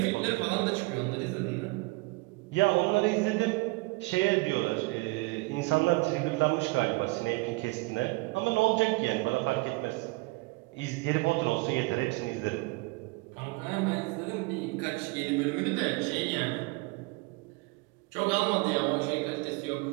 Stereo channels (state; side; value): quieter; left; 25.3 dB